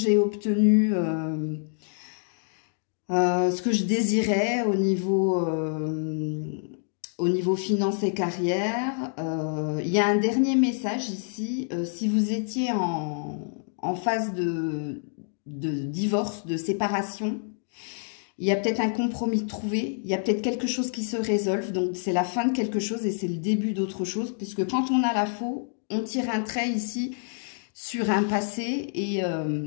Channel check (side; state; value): right; silent; digital silence